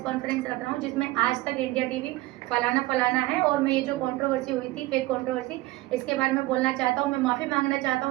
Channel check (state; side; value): quieter; left; 19.2 dB